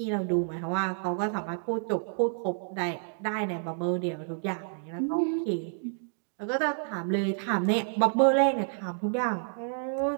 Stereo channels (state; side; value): silent; left; digital silence